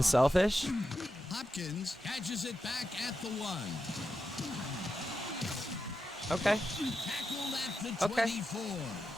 selfish. Hopkins catches it back at the 1. Okay. Tackled at the 24.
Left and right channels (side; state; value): both; normal; correlation 0.88